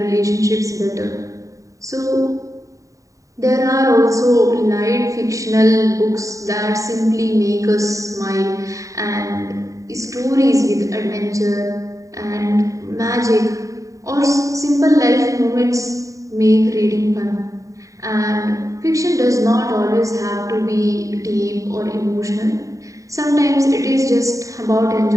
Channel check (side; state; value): left; late; 0.16 ms